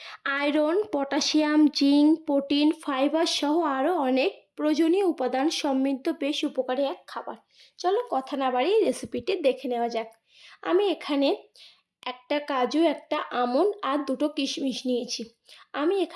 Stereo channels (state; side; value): identical; both; correlation 1.00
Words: iron, potassium, zinc, protein, fibre সহ আরও অনেক প্রয়োজনীয় উপাদান সমৃদ্ধ বেশ উপকারী এক খাবার। চলো কথা না বাড়িয়ে রেসিপিটি দেখে নেওয়া যাক। আমি এখানে একটা কাজু, একটা আমন্ড আর দুটো কিশমিশ নিয়েছি। আমি